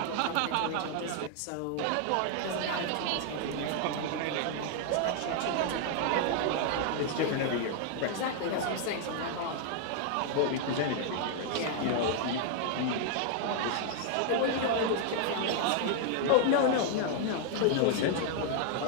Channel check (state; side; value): different; both; correlation 0.00